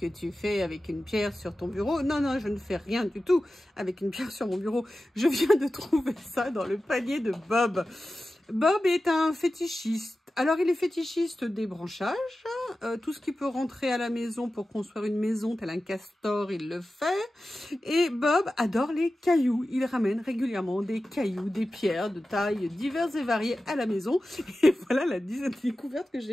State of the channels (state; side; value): normal; both; correlation 0.94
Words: tu fais avec une pierre sur ton bureau? Non, non, je ne fais rien du tout avec une pierre sur mon bureau. Je viens de trouver ça dans le panier de Bob. Bob est un fétichiste. Alors, il est fétichiste des branchages. Tout ce qui peut rentrer à la maison pour construire une maison, tel un castor, il le fait. Et Bob adore les cailloux. Il ramène régulièrement des cailloux, des pierres de tailles diverses et variées à la maison. Et voilà la découverte que